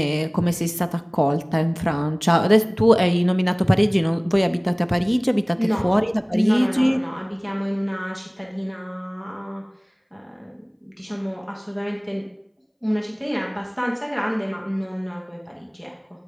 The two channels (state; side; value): identical; both; correlation 1.00